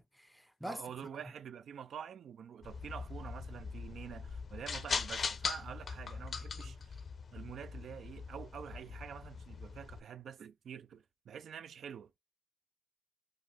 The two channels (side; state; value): both; normal; correlation 0.80